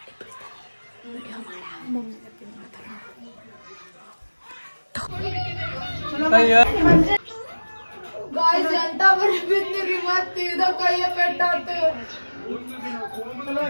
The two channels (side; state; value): both; inverted; correlation -1.00